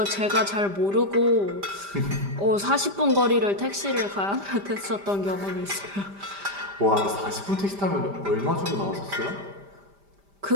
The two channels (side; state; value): left; late; 5.0 ms